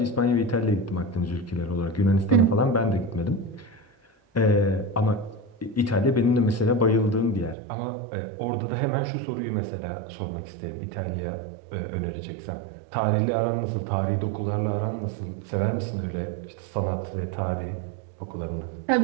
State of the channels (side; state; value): left; drops out; at 7.6 s